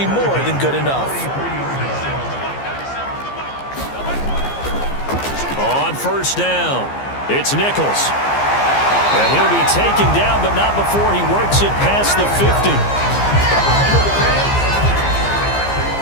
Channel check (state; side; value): late; right; 15 ms